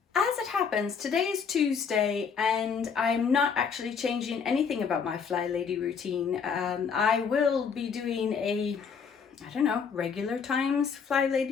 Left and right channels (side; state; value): right; quieter; 6.2 dB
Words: As it happens, today is Tuesday and I'm not actually changing anything about my Fly Lady routine. I will be doing a regular times Fly